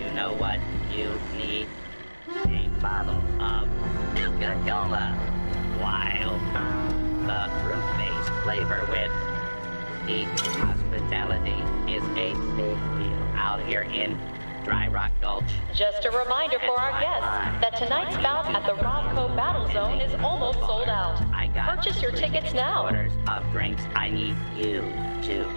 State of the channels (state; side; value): inverted; both; correlation -1.00